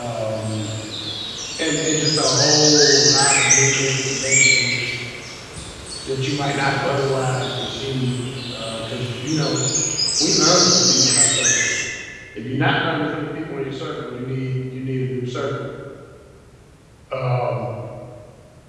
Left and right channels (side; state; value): both; identical; correlation 1.00